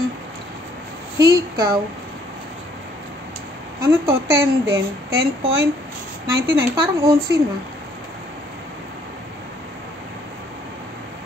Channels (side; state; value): both; normal; correlation 0.64